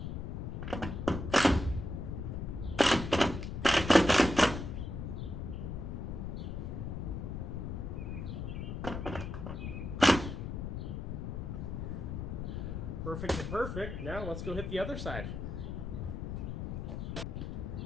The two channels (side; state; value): left; noise; rumble, 4 dB below the sound